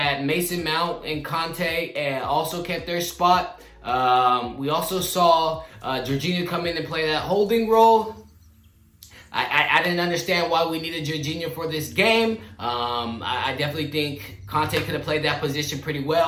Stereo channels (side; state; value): both; identical; correlation 1.00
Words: Mason Mount and Conte also kept their spot. We also saw Jorginho come in and play that holding role. I didn't understand why we needed Jorginho for this game. I definitely think Conte could have played that position pretty